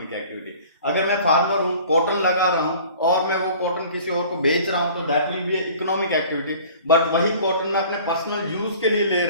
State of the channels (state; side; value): inverted; both; correlation -0.47